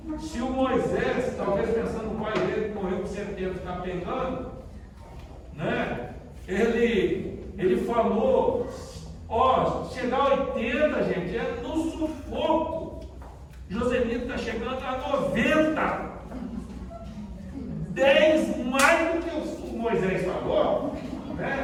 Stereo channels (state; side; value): identical; both; correlation 1.00